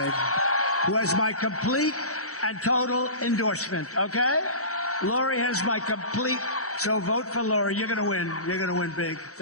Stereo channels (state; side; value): late; right; 0.65 ms